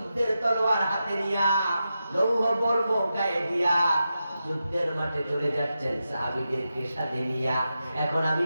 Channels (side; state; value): both; inverted; correlation -0.89